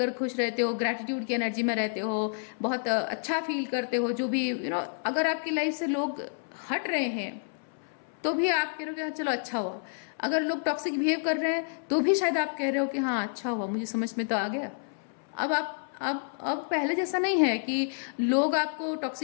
खुश रहते हो, ग्रैटिट्यूड की एनर्जी में रहते हो, बहुत अच्छा फील करते हो। जो भी अगर आपकी लाइफ से लोग हट रहे हैं तो भी आप कह रहे हो कि हाँ चलो अच्छा हुआ, अगर लोग टॉक्सिक बिहेव कर रहे हैं तो भी शायद आप कह रहे हो कि हाँ अच्छा हुआ, मुझे समझ में तो आ गया। अब आप अब पहले जैसा नहीं है कि लोग आपको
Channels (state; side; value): silent; right; 58 dB below the other